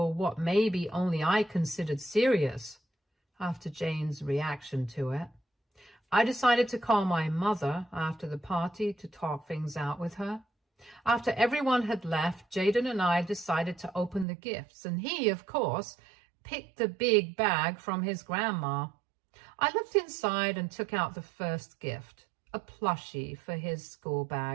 what maybe only I considered serious after Jane's reaction to it. I decided to call my mother after the party to talk things out with her. After everyone had left, Jaden and I decided to open the gifts, and he, of course, picked the big bag from his grandma. I looked inside and took out the first gift, a plushie for his school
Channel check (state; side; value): drops out; left; at 14.2 s